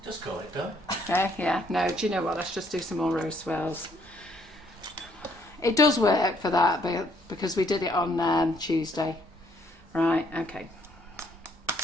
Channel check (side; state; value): both; normal; correlation 0.67